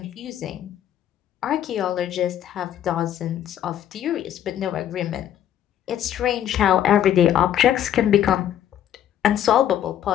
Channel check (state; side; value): quieter; right; 10.9 dB